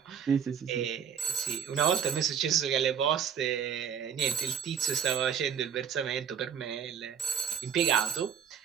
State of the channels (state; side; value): quieter; left; 7.7 dB